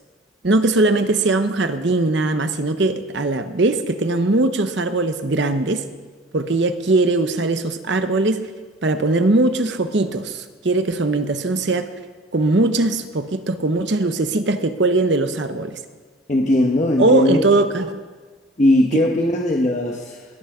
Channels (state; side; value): normal; both; correlation 0.43